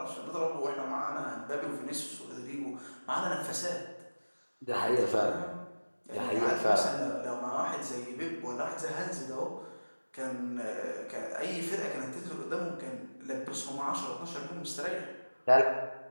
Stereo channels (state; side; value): inverted; both; correlation -1.00